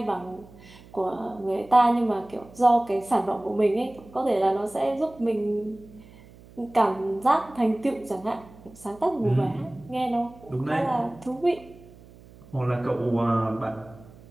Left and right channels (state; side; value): noise; right; hum, 22 dB below the sound